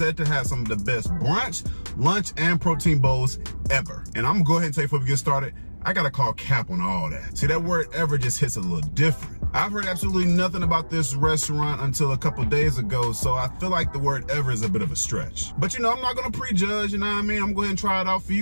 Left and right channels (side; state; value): both; inverted; correlation -1.00